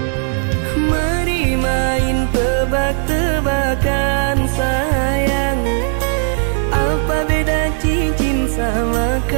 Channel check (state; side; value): silent; left; 59 dB below the other